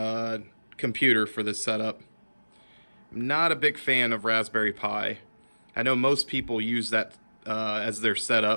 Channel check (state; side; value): inverted; both; correlation -1.00